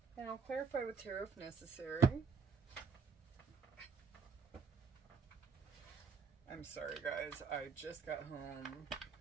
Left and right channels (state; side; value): quieter; left; 5.6 dB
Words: and I'll clarify with tarot if necessary. I'm sorry guys, I just got home